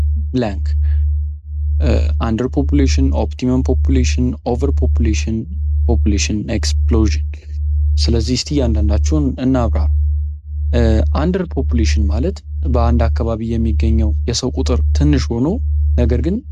blank. Underpopulation, optimum population, overpopulation, population explosion. ስለዚህ እስቲ አንዳንዳችሁን እናብራራ። አንደር ፖፑሌሽን ማለት በአንድ አካባቢ የሚገኘው የሰው ቁጥር ትንሽ ሆኖ ነገር ግን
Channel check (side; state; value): both; identical; correlation 1.00